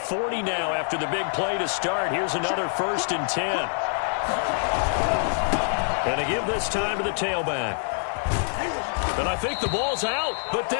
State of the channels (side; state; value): right; silent; digital silence